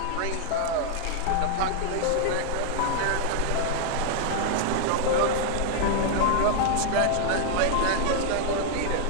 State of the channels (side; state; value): both; different; correlation 0.00